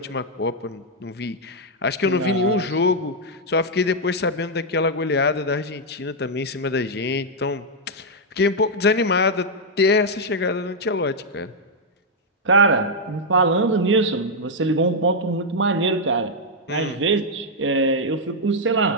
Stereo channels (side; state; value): both; normal; correlation -0.02